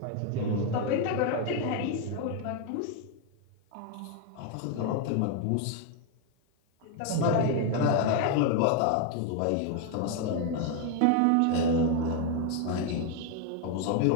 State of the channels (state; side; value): different; both; correlation 0.01